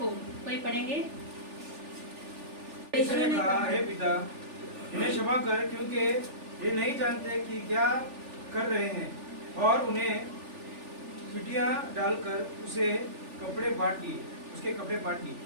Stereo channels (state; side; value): late; left; 3.4 ms